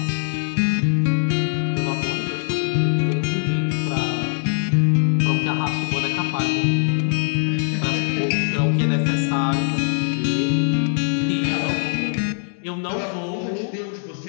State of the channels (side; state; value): right; silent; 57 dB below the other